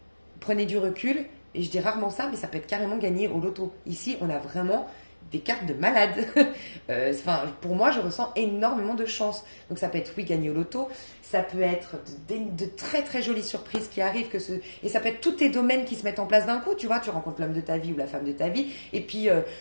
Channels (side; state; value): both; inverted; correlation -1.00